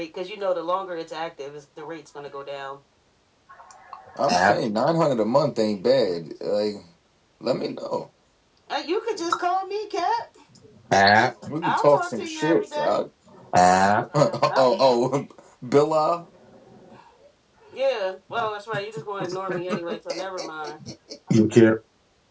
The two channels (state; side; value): identical; both; correlation 1.00